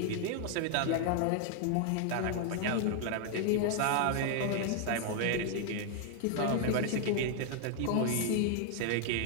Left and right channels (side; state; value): both; different; correlation 0.00